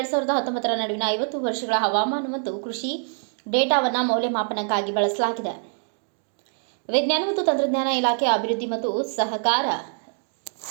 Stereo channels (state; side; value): silent; left; 57 dB below the other